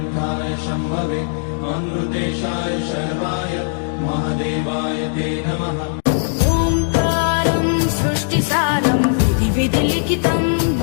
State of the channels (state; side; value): silent; right; digital silence